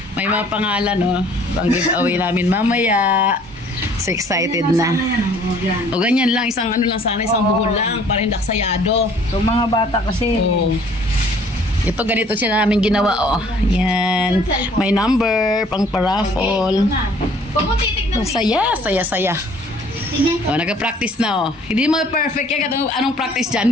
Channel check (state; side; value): normal; both; correlation 0.56